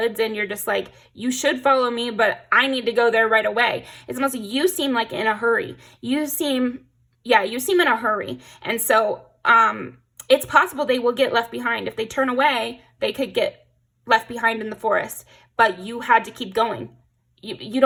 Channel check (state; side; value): identical; both; correlation 1.00